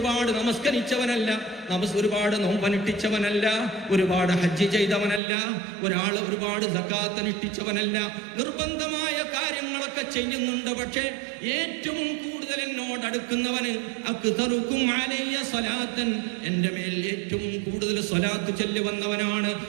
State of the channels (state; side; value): drops out; left; at 5.2 s